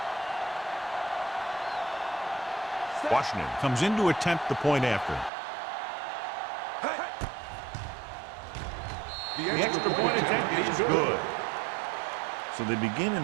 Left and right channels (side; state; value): left; drops out; at 5.3 s